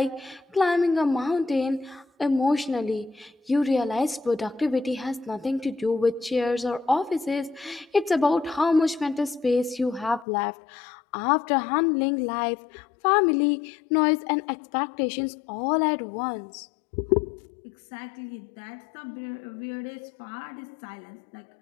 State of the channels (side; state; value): right; drops out; at 10.2 s